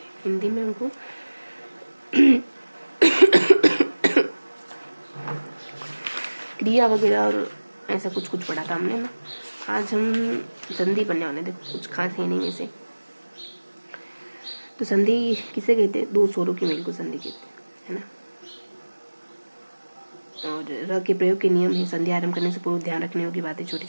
हिंदी में हमको क्रिया वगैरह और ऐसा कुछ कुछ पढ़ा था हमने ना। आज हम संधि पढ़ने वाले थे, कुछ खास है नहीं वैसे। तो संधि किसे कहते हैं, दो स्वरों के मेल को संधि कहते हैं, है ना। और र के प्रयोग के नियम है, संधि आरंभ करने से पूर्व ध्यान रखने योग्य बातें छोटी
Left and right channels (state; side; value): inverted; both; correlation -1.00